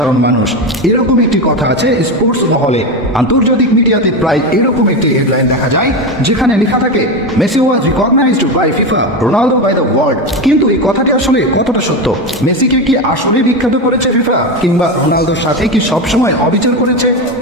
মানুষ। এরকম একটি কথা আছে স্পোর্টস মহলে, আন্তর্জাতিক মিডিয়াতে প্রায় এরকম একটি হেডলাইন দেখা যায় যেখানে লেখা থাকে Messi was recognised by FIFA, Ronaldo by the world. কিন্তু এই কথাটি আসলে কতটা সত্য? মেসিকে কি আসলে বিখ্যাত করেছে ফিফা, কিংবা রোনালদোর সাথে কি সবসময় অবিচার করেছে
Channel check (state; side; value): normal; both; correlation 0.16